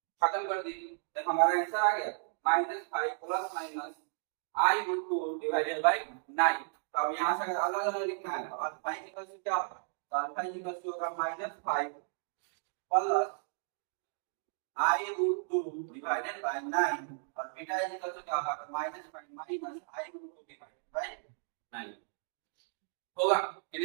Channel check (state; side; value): silent; left; digital silence